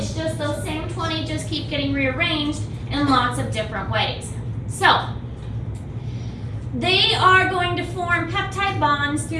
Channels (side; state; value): both; identical; correlation 1.00